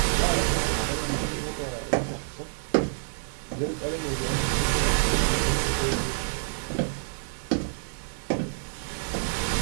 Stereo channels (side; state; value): left; silent; digital silence